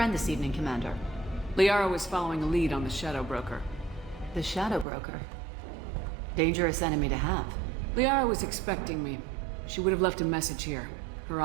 this evening, Commander. Liara was following a lead on the Shadow Broker. The Shadow Broker? Dangerous enemy to have. Liara was expecting me. She would have left a message here. Her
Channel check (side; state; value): left; drops out; at 4.9 s